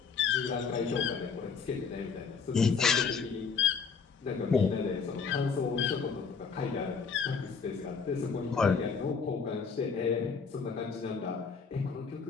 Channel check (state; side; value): quieter; right; 5.6 dB